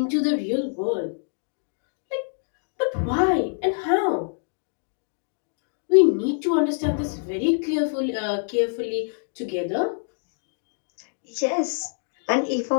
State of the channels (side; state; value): right; silent; digital silence